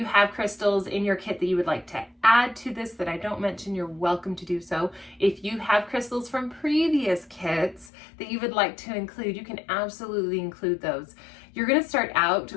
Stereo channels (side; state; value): right; drops out; at 7.9 s